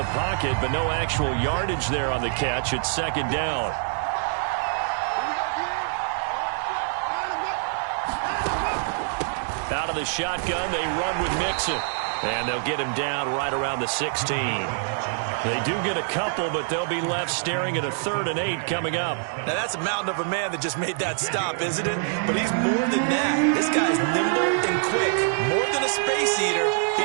pocket, but no actual yardage there on the catch. It's 2nd down. Out of the shotgun, they run with Mixon. And they'll get him down right around the 16. They do get a couple, but they'll be left staring at a 3rd and 8 coming up. Now, that's a mountain of a man that just made that stop, isn't it? But he's more than that. This guy's nimble and quick. More than a space eater. He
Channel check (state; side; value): silent; left; digital silence